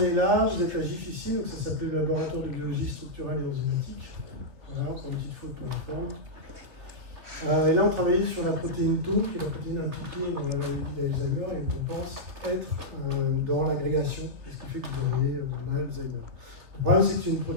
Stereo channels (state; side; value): late; left; 3.3 ms